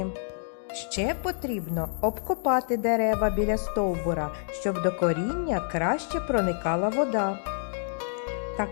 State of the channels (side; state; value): right; silent; digital silence